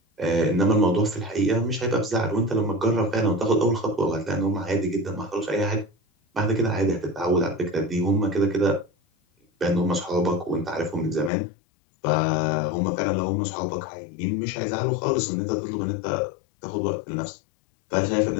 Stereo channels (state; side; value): drops out; right; at 11.3 s